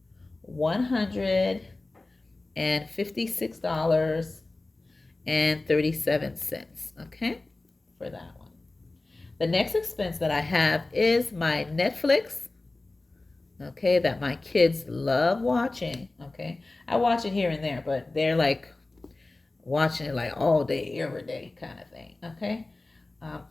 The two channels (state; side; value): quieter; right; 3.1 dB